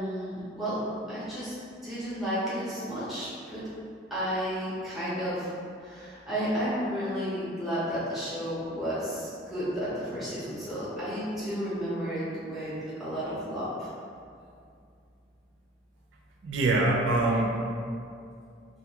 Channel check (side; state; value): both; normal; correlation 0.43